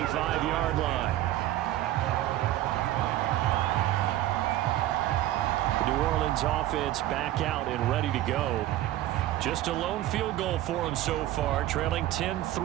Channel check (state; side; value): quieter; left; 14.3 dB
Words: line. The New Orleans offense back out and ready to go. Just a lone field goal for them so far, trailing